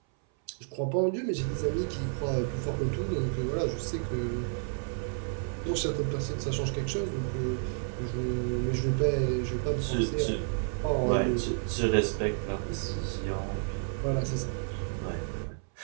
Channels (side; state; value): left; silent; 57 dB below the other